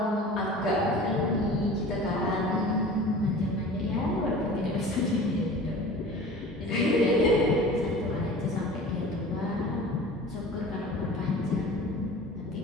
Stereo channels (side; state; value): both; normal; correlation 0.40